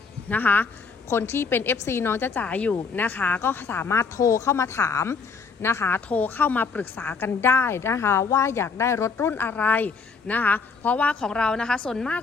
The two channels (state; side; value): quieter; right; 5.1 dB